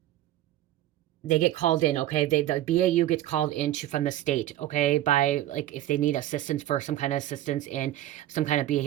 They get called in, okay? The BAU gets called into from the state, okay? By like if they need assistance for some kind of assistance in some kind of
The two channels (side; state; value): left; quieter; 13.7 dB